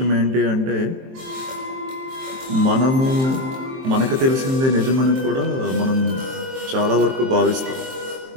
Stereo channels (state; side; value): late; left; 23 ms